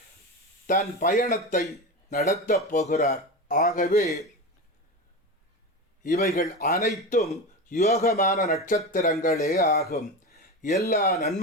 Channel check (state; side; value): normal; both; correlation 0.23